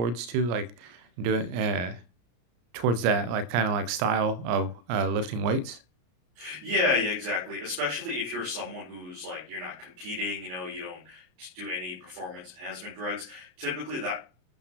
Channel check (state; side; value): late; left; 33 ms